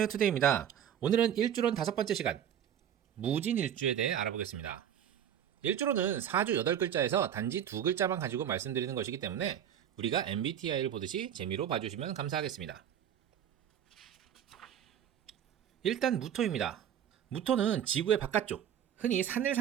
투데이입니다. 오늘은 일주론 5번째 시간, 무진일주에 대해 알아보겠습니다. 일주론은 4주 8글자에서 단지 2글자만 가지고 말씀드리는 것이기 때문에 우리가 MBTI를 보듯이 재미로 봐주시면 감사하겠습니다. 일단 무토입니다. 무토는 지구의 바깥쪽, 흔히 산을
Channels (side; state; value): left; quieter; 9.7 dB